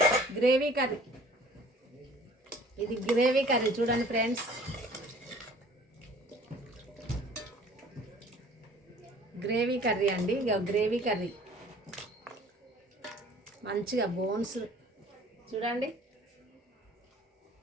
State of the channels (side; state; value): both; normal; correlation 0.51